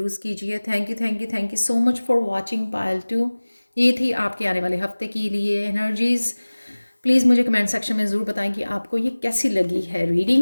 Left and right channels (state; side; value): inverted; both; correlation -1.00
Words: कीजिए। Thank you, thank you, thank you so much for watching Payal 2। ये थी आपके आने वाले हफ्ते के लिए एनर्जीज़। प्लीज़ मुझे कमेंट सेक्शन में ज़रूर बताएं कि आपको ये कैसी लगी है